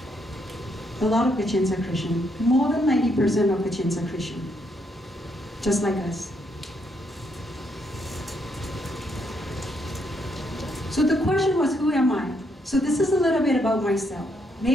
A lot of Kachins are Christian. More than 90% of Kachins are Christian. Just like us. So the question was, who am I? So this is a little bit about myself.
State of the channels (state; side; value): normal; both; correlation 0.75